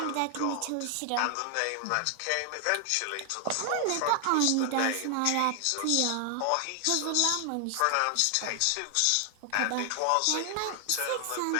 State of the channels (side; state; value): both; different; correlation 0.00